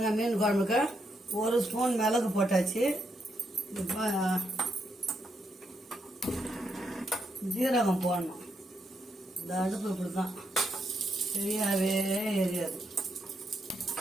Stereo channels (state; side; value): normal; both; correlation 0.79